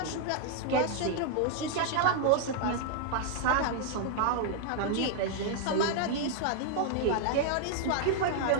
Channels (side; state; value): both; different; correlation 0.00